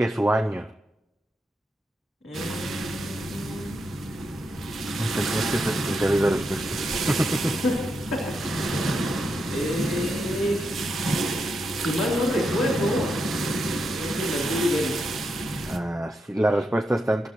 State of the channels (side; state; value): both; normal; correlation 0.84